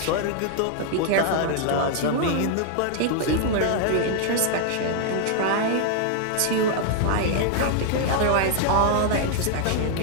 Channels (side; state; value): both; different; correlation 0.00